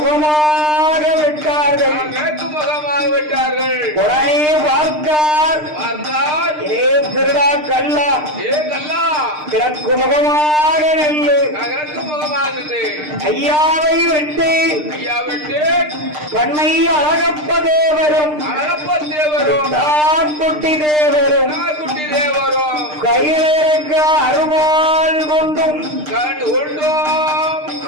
விட்டார்கள். மேற்கு முகமாக விட்டார்கள். உடனே பார்த்தார். பார்த்தால் ஏ திருடா கல்லா, ஏ கல்லா கிழக்கு முகமாக நெல்லு. கிழக்கு முகமாகுது. ஐயாவை விட்டு ஐயா விட்டு பண்ணை அழகப்ப தேவரும் அழகப்ப தேவரும் குட்டி தேவரும் குட்டி தேவரும் கையிலிருக்க அருவாள் கொண்டும் கண்டு கொண்டோம்.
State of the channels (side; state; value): left; late; 6.6 ms